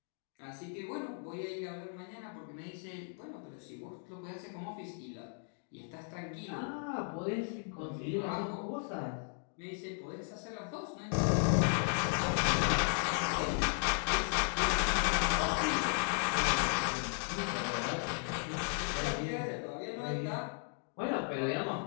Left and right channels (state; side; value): silent; right; 54 dB below the other